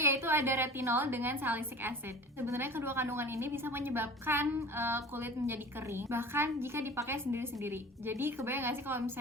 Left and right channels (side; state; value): both; normal; correlation 0.40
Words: yaitu ada retinol dengan salicylic acid. Sebenarnya kedua kandungan ini bisa menyebabkan kulit menjadi kering, bahkan jika dipakai sendiri-sendiri. Jadi kebayang gak sih kalau